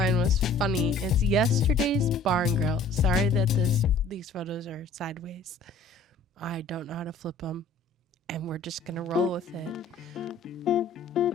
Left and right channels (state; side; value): quieter; right; 3.5 dB